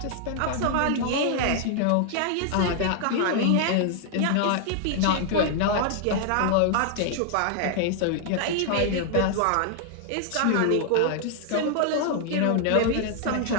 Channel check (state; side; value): different; both; correlation 0.00